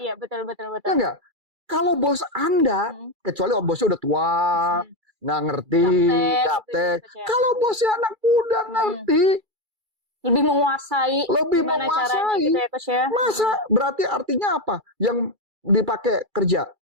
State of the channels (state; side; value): late; left; 2.3 ms